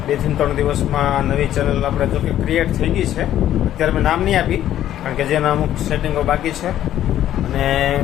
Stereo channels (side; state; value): right; quieter; 12.0 dB